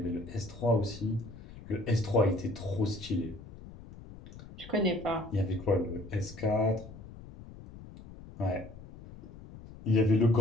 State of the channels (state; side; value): noise; left; rumble, 16 dB below the sound